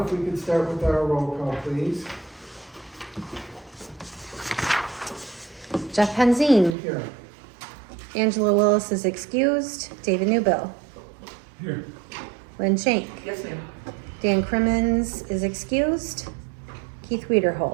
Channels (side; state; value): left; drops out; at 6.8 s